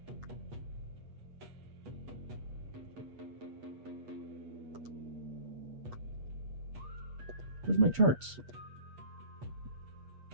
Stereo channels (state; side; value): late; left; 8.3 ms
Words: Where's my charts?